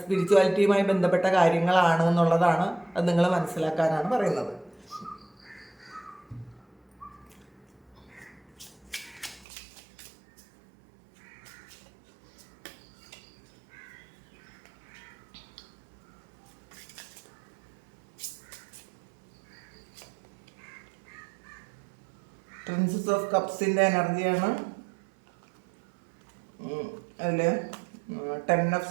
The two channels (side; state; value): left; drops out; at 9.5 s